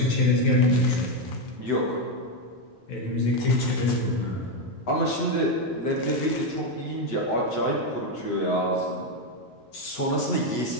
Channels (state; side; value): late; right; 9.4 ms